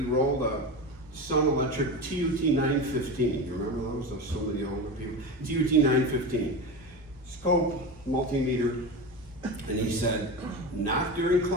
rolled a Sun Electric TUT 915. You remember those? Those so many older people. TUT 915. Scope, multimeter. And he said, not during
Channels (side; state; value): both; normal; correlation 0.24